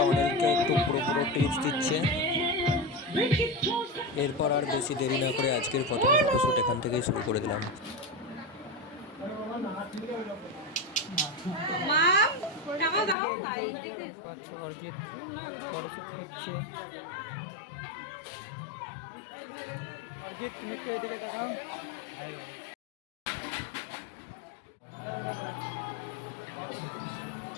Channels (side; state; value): right; drops out; at 13.2 s